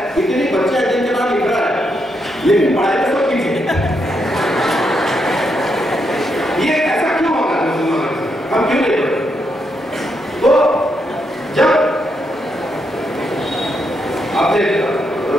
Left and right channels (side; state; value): both; normal; correlation 0.80